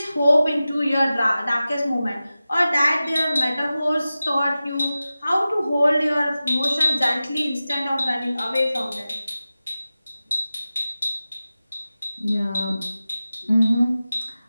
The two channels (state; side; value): inverted; both; correlation -0.95